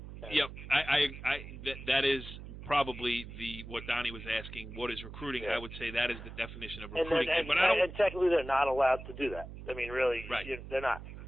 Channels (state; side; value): noise; right; hum, 12 dB below the sound